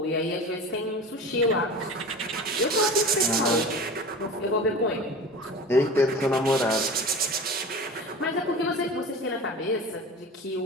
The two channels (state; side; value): normal; both; correlation 0.34